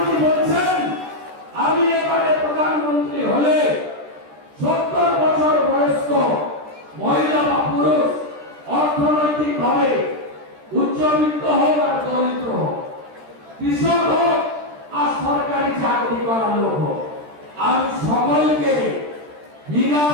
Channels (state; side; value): late; left; 13 ms